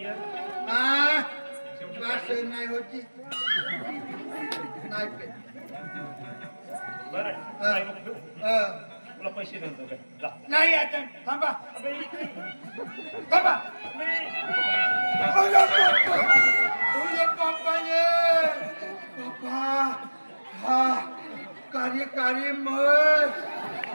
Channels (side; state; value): both; inverted; correlation -1.00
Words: इयर हा वास नाही होती नाही पे बरं हा. काय नको ठेवू. हा. तुला पैसे देतो काय जा. नाही आता थांबा अबे, इकडे. थांबा अबे. तुझे पप्पा ये पप्पा हा कार्य मग